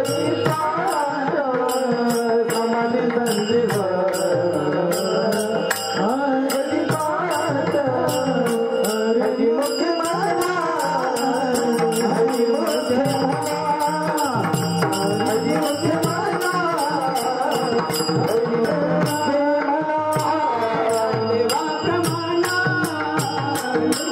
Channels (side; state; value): both; identical; correlation 1.00